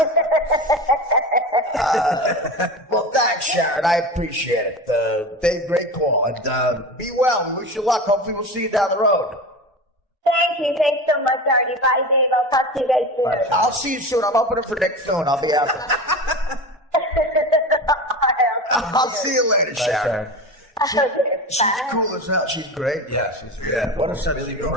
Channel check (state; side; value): normal; both; correlation 0.28